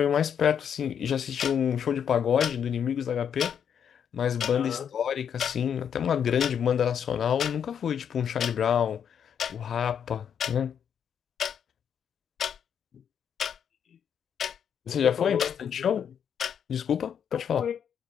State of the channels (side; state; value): right; quieter; 8.1 dB